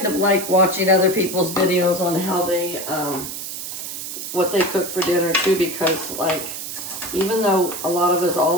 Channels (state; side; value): noise; right; hiss, 7 dB below the sound